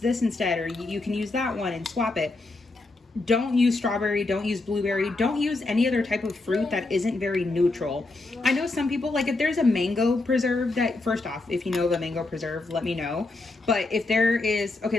instead, or you can use that one and swap it. Don't use strawberry, don't use blueberry, don't use any other type of fruit that isn't very neutral. I know some people, like if there's a mango preserve that, first off, if you know of a mango preserve, let me know. But if there is, okay,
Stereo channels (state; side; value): quieter; right; 3.2 dB